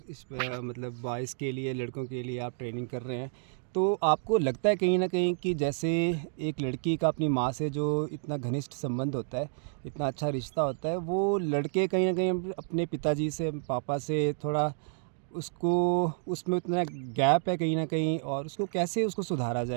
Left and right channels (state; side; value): silent; left; digital silence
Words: बॉयज़ के लिए, लड़कों के लिए आप ट्रेनिंग कर रहे हैं। तो आपको लगता है कहीं न कहीं कि जैसे एक लड़की का अपनी माँ से जो इतना घनिष्ठ संबंध होता है, इतना अच्छा रिश्ता होता है, वो लड़के कहीं न कहीं अपने पिताजी से, पापा से थोड़ा उसको उसमें उतना गैप है कहीं न कहीं, और उसको कैसे उसको सुधारा